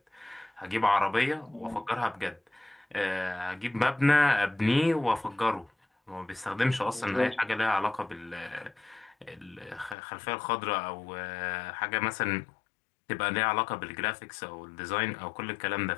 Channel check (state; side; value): drops out; right; at 10.0 s